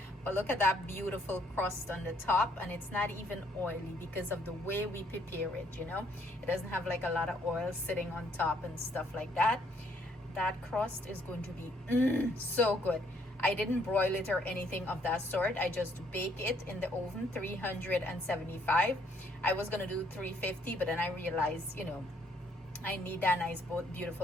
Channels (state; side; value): normal; both; correlation 0.67